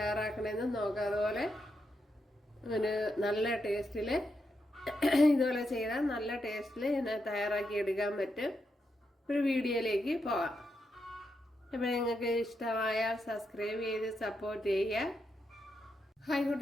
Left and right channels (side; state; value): both; normal; correlation 0.84